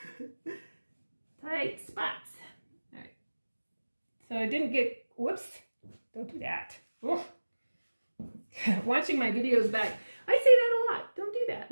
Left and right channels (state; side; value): inverted; both; correlation -1.00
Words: Tight spots. All right. So I didn't get, whoops, don't do that. Oh. Watching my videos back, I say that a lot. Don't do